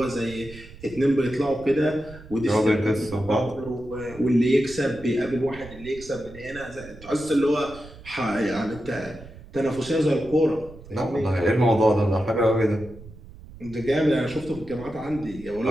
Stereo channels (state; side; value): noise; right; rumble, 18 dB below the sound